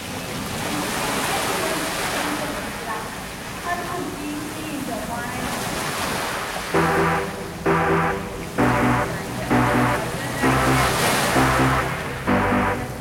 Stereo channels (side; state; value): both; identical; correlation 1.00